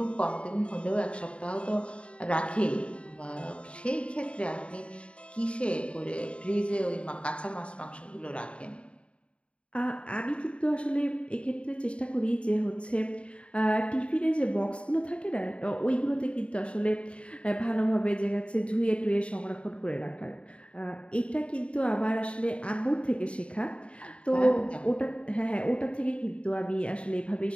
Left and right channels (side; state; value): right; late; 0.060 ms